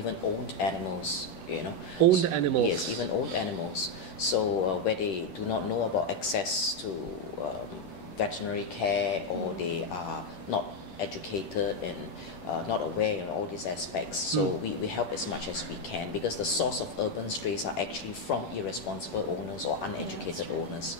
owned animals, you know. Owned animals? Yes, even owned animals. So where they do not know about access to veterinary care, or they are not educated and not aware in all these aspects. So we help as much as we can, because the source of urban strays are actually from irresponsible owners or uneducated owners,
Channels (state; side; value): late; right; 10 ms